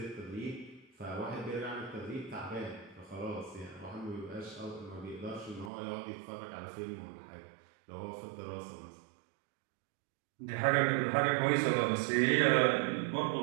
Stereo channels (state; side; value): drops out; left; at 5.7 s